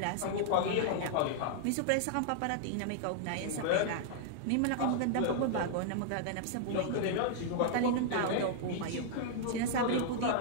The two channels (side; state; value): both; different; correlation -0.01